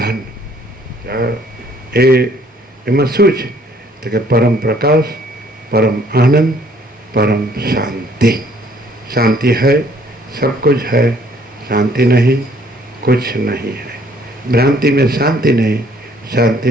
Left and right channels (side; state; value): both; normal; correlation 0.62